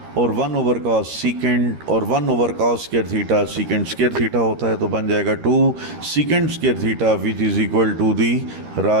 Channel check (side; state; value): left; late; 13 ms